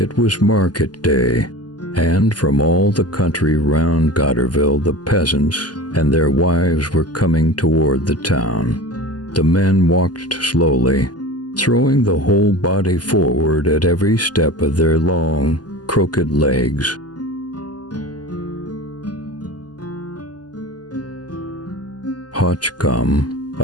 was market day, and from all the country round Gotterville the peasants and their wives were coming toward the town. The men walked slowly, throwing the whole body forward at every step of their long, crooked legs. Hotchcomb,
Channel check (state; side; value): late; right; 0.69 ms